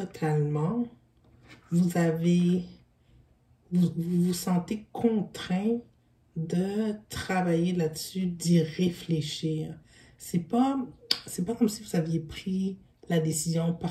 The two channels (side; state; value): both; identical; correlation 1.00